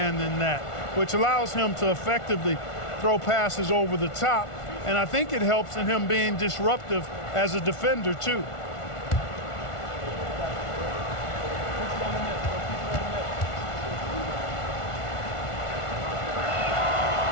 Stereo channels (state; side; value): late; right; 1.4 ms